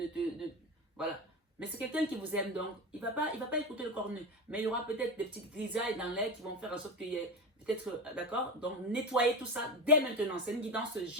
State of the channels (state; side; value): normal; both; correlation 0.22